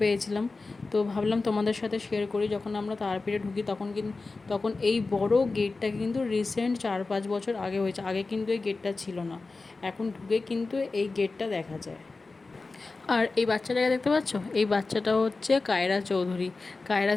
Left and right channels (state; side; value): quieter; right; 3.7 dB